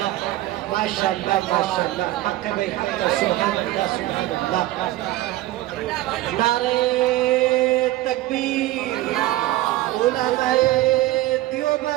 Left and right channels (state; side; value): quieter; left; 16.4 dB